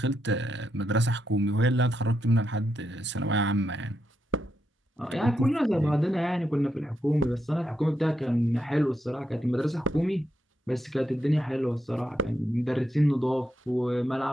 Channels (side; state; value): both; normal; correlation 0.82